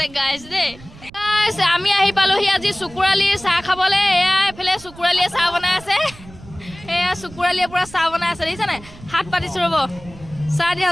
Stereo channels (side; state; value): right; noise; rumble, 19 dB below the sound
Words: গাইছ দেই আমি আহি পালোহি আজি চকুৰালিৰ চাহ খাবলৈ এয়া এইফালে চকুৰালিয়ে চাহ বনাই আছে এয়া চকুৰালিয়ে পুৰা চাহ বনাই আছে দেখিছানে হাত পাতিছো ৰ'ব চাহ